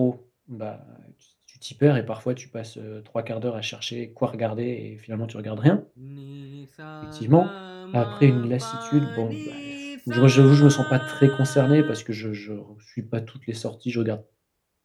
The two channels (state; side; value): identical; both; correlation 1.00